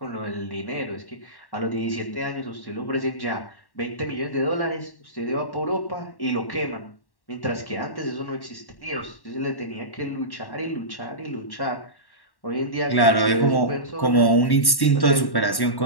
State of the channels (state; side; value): late; right; 1.1 ms